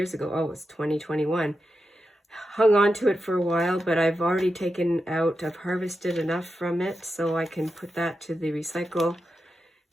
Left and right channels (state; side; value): normal; both; correlation 0.89